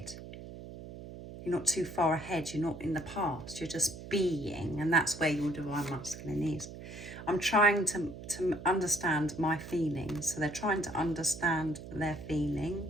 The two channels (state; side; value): noise; right; hum, 12 dB below the sound